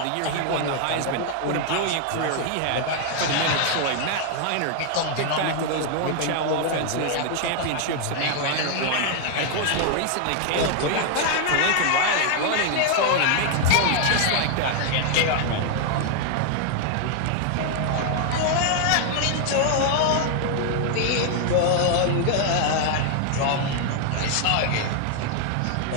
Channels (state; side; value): different; both; correlation 0.00